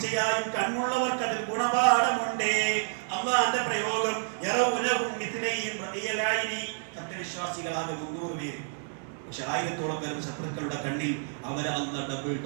കണ്ണുള്ളവർക്ക് അതിൽ ഗുണപാഠമുണ്ട്. അല്ലാഹുവിന്റെ പ്രയോഗം സത്യവിശ്വാസികളാകെ 300 പേര്. പക്ഷെ 1000-ഓളം പേരും ശത്രുക്കളുടെ കണ്ണിൽ അവരെ അല്ലാഹു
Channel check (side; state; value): left; silent; digital silence